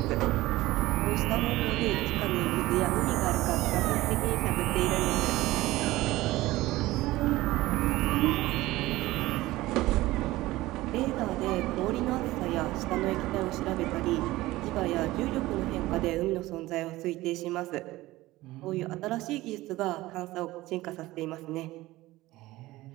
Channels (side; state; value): left; quieter; 18.0 dB